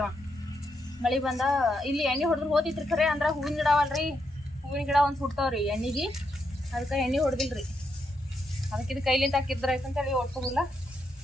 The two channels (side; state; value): both; normal; correlation 0.81